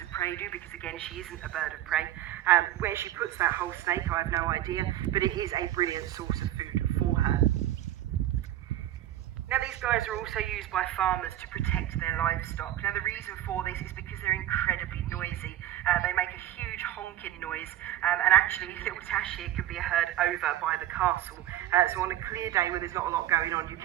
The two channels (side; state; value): left; quieter; 13.1 dB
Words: of prey do, because again, she isn't a bird of prey. Where she puts that whole snake, I have no idea, but it is a brilliant source of food for her. Now, these guys are also used by farmers to protect their livestock. Now, the reason for this is because they're incredibly noisy. They make a huge honking noise, and actually little Tash here can be heard over by the castle. So on a clear day where there's not a lot going on, you